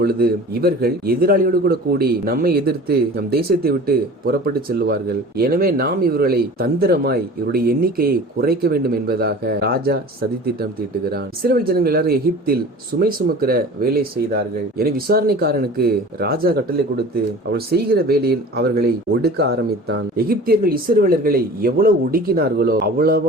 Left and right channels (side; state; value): both; normal; correlation 0.40